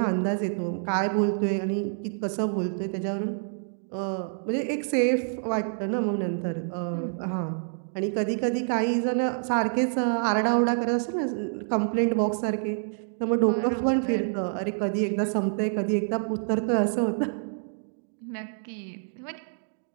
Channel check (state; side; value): silent; left; digital silence